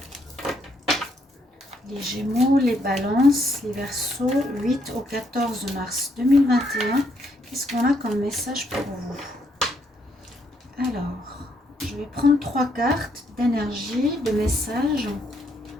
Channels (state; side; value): normal; both; correlation 0.73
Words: les balances, les verseaux, 8 au 14 mars 2021. Qu'est-ce qu'on a comme message pour vous? Alors, je vais prendre 3 cartes d'énergie, de messages.